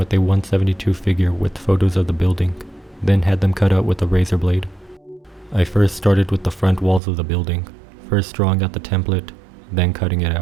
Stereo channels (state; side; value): drops out; left; at 7.0 s